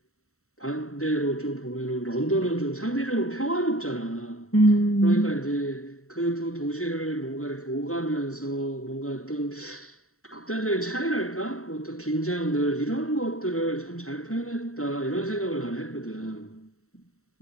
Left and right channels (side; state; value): right; late; 0.63 ms